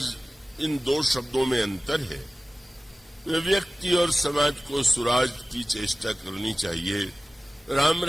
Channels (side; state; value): both; normal; correlation 0.96